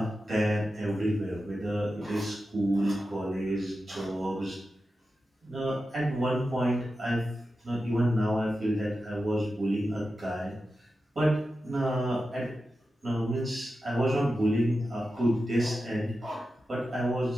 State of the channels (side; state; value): both; normal; correlation 0.91